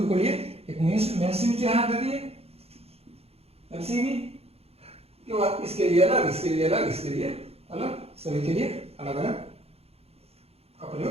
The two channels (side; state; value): left; late; 0.29 ms